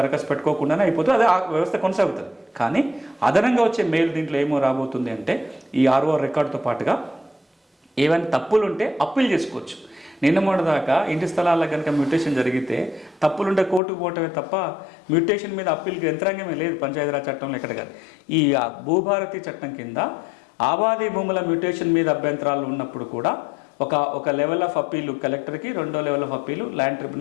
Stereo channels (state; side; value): drops out; right; at 13.8 s